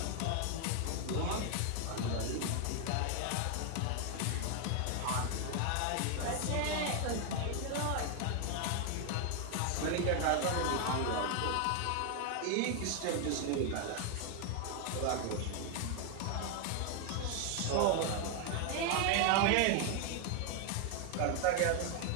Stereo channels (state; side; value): different; both; correlation 0.01